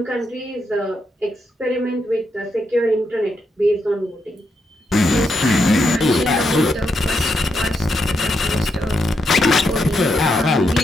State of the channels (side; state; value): both; normal; correlation 0.82